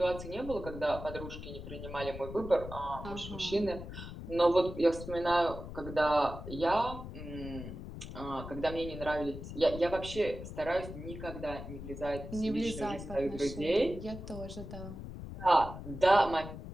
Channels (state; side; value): noise; left; rumble, 10 dB below the sound